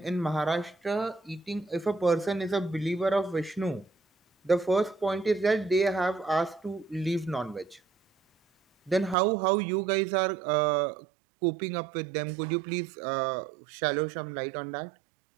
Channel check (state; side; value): drops out; left; at 9.2 s